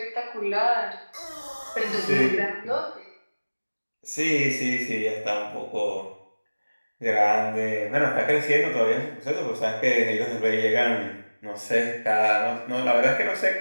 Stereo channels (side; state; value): both; inverted; correlation -1.00